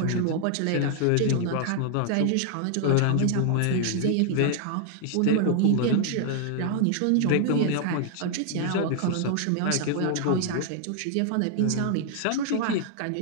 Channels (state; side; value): different; both; correlation 0.00